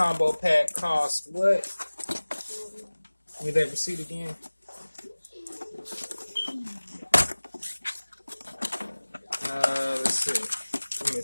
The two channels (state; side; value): inverted; both; correlation -1.00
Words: pack cost what? Give me that receipt again. Let's see. Give me a